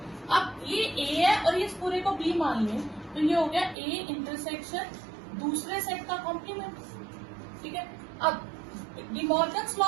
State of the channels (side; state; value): left; drops out; at 3.8 s